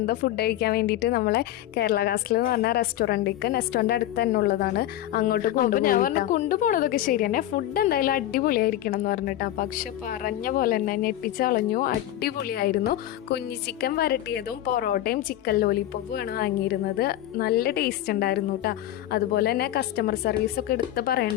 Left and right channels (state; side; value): quieter; right; 13.2 dB